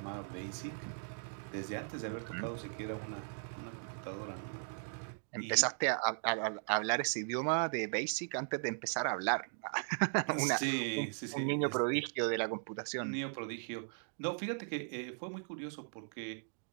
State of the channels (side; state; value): left; silent; digital silence